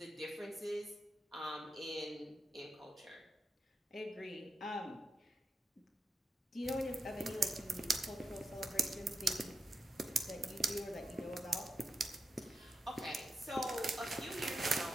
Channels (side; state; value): both; normal; correlation 0.88